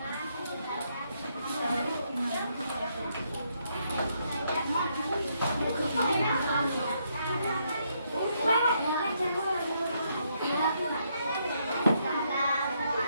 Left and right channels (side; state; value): both; inverted; correlation -0.75